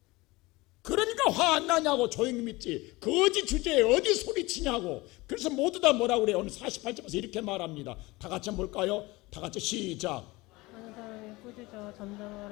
그러니까 화 안 나냐고. 조용히 믿지. 거지 주제에 어디 소리치냐고. 그래서 모두 다 뭐라고 그래요. 오늘 48절에서 이렇게 말합니다. 다 같이 한번 볼까요? 다 같이 시작. 하는 사람이 꾸짖어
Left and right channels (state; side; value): quieter; right; 21.7 dB